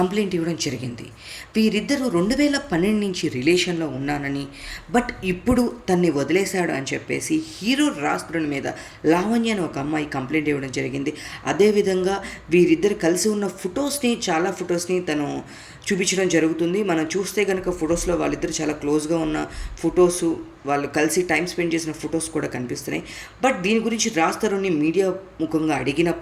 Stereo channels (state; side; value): identical; both; correlation 1.00